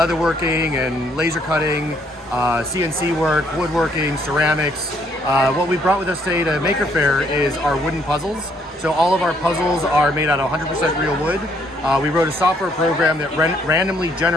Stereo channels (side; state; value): both; normal; correlation 0.68